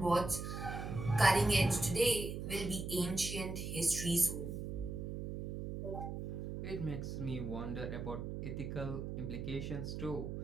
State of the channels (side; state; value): right; noise; hum, 5 dB below the sound